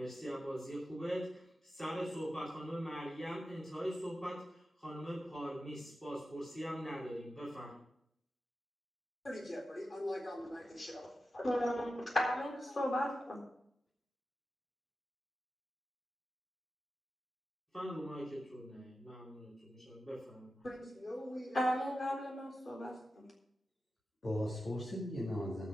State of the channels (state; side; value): normal; both; correlation 0.92